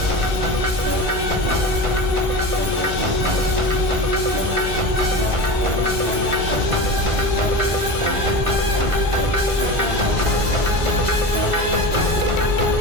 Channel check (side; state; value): left; late; 1.5 ms